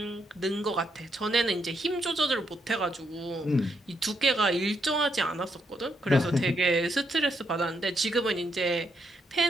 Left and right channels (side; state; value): both; normal; correlation 0.77